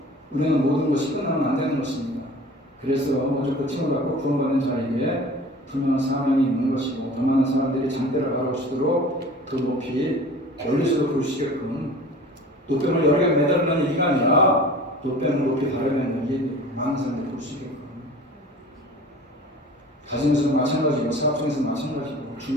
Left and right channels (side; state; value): both; normal; correlation 0.42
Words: 우리는 모든 것이 끝나면 안 되는 것입니다. 그래서 오직 그 팀을 갖고 구원받는 자에게 분명한 사명이 있는 것이고 더 많은 사람들이 장대를 바라보시도록 더 높이 멀리서도 볼 수 있게끔 노뱀을 여러 개 매달리는 얘기가 아니라 노뱀을 높이 바라보는 얘기 많은 사람들이 볼 수 있게끔 가정에서는 마찬가지고 사업장에서는 마찬가지고